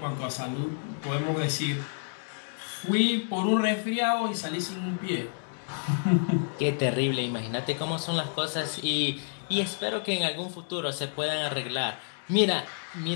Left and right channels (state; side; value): silent; right; 58 dB below the other